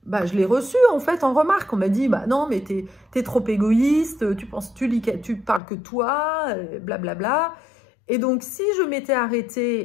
je l'ai reçu en fait en remarque. On m'a dit non mais t'es trop égoïste, tu parles que toi, blablabla. Et donc si je m'étais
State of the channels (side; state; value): right; drops out; at 5.6 s